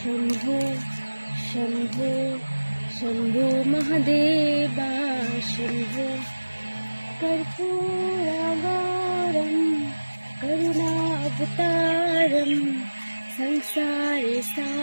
শম্ভু শম্ভু মহাদেবা শম্ভু কর্পূরগৌরম করুণাবতারম সংসারে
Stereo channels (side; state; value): both; inverted; correlation -1.00